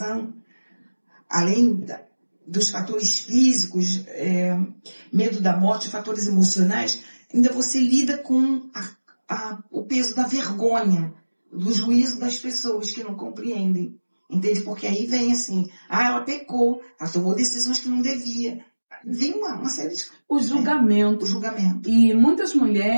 além dos fatores físicos, medo da morte, fatores emocionais, ainda você lida com o peso da vergonha, do juízo das pessoas que não compreendem. Entende? Porque aí vem assim, ela pecou, ela tomou decisões que não devia. Vem uma série de... O julgamento. O julgamento. E muitas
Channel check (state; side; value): inverted; both; correlation -1.00